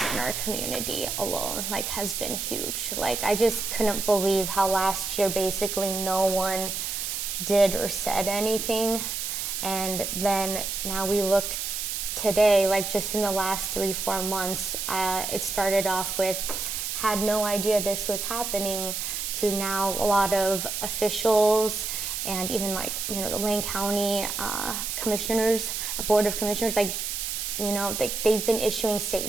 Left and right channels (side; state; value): right; noise; hiss, 3 dB below the sound